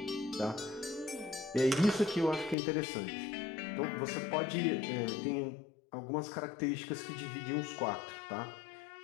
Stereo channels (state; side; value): drops out; right; at 2.6 s